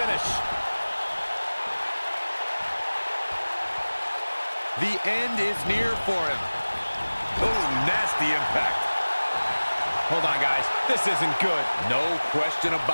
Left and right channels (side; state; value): both; inverted; correlation -1.00